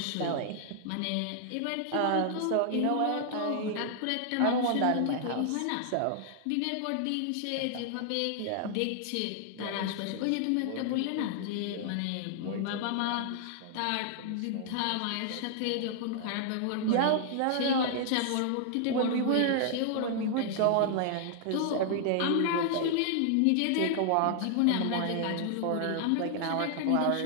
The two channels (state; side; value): different; both; correlation 0.00